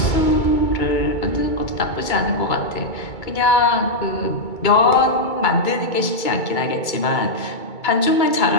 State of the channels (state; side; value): late; right; 2.2 ms